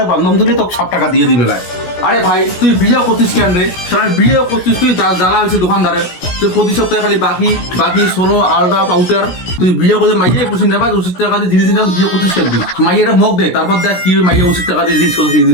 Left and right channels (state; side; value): late; right; 16 ms